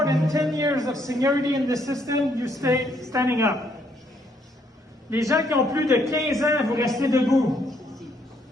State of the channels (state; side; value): normal; both; correlation 0.70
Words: than 10 years of seniority in the system, you stay standing up. Les gens qui ont plus de 15 ans, vous restez debout.